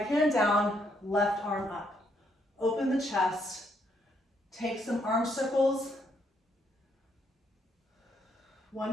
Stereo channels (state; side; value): normal; both; correlation 0.73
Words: hand down, left arm up. Open the chest, take some arm circles, one